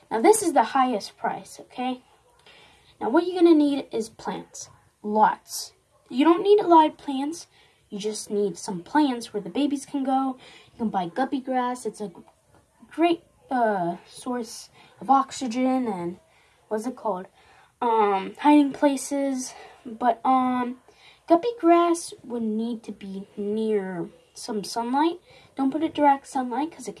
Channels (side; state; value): both; identical; correlation 1.00